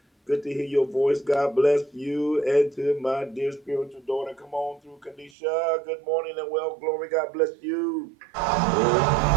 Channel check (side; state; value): left; drops out; at 5.3 s